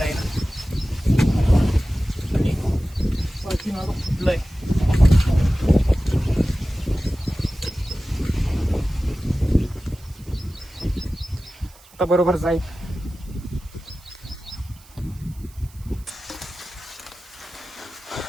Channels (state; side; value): noise; right; hiss, 25 dB below the sound